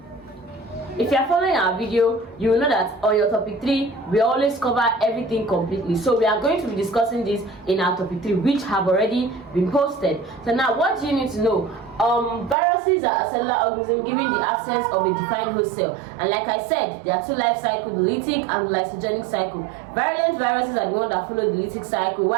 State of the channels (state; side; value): drops out; left; at 12.6 s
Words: If you are following our video, you will know that on your topic 3, we always cover everything completely. So we are going to be discussing this in our topic 3, which have already been posted. So now, what do you need to know? Viruses are a cellular organism given the absence of a defined host cell, and like I said, there are two life cycles, the lytic and the lysogenic cycle. Virulent viruses are the ones that follow the lytic cycle,